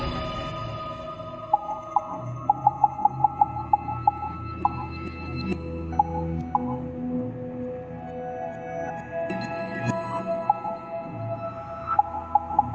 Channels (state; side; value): noise; left; hum, 30 dB below the sound